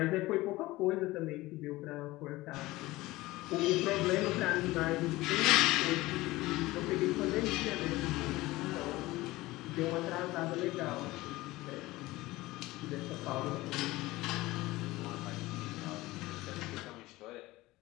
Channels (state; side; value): quieter; right; 19.1 dB